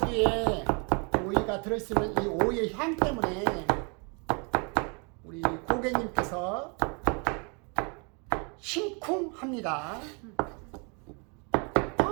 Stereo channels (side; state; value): left; quieter; 34.4 dB